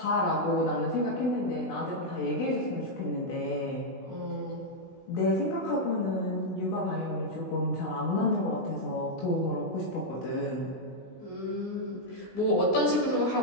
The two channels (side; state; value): right; late; 16 ms